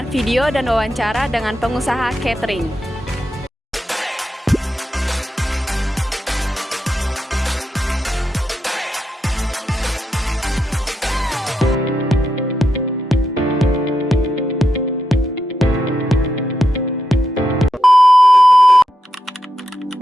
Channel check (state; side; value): normal; both; correlation 0.85